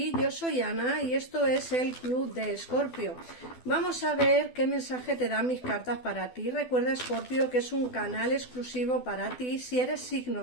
Yo soy Ana y esto es el Club de Escorpio. Vamos a ver qué mensaje te dan mis cartas para ti. Recuerda, Escorpio, que es un canal exclusivo para ti si eres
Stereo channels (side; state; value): right; late; 12 ms